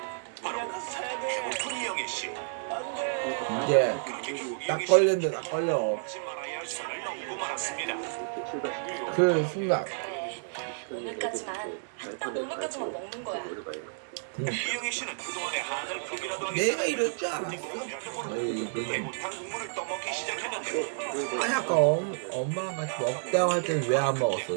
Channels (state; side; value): silent; left; digital silence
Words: 바로 배고픈 이영애 씨. 이제 딱 걸렸는데 딱 걸려. 하지 말아야 할 선을 넘고 말았습니다. 이렇게 출발시킵니다. 그 순간 오늘까지만 딱 오늘까지만 먹는 거야. 이영애 씨는 그동안의 한을 극이라도 내가 이럴 줄 알았어. 에이, 그건 배고탕 국물을 떠먹기 시작했는데 아니 아까 엄마랑 같이 먹자고 할 때 왜 안 먹었어